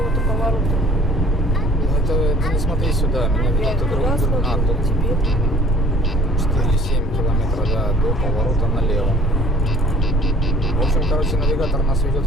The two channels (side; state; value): both; normal; correlation 0.53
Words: поворота. Ну, это не смотри сюда, меня Я ведет туда смотрю, тут тебе. 4 или 7 километров, да, до поворота налево. В общем, короче, навигатор нас ведет